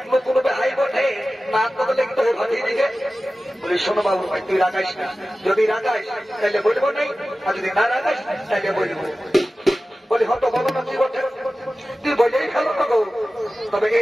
নতুন বেহাই বটে না তো লিখতে হবে ভাটিয়ে দিকে বলি শোনো বাবু ভাই তুই রাগাইস না যদি রাগাইস তাহলে বলবো নাই আর যদি না রাগাইস তাহলে বলবো বলি হয়তো বলো না কি বটে তুই বলেই ফেলো না গো তবে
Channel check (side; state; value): both; normal; correlation 0.95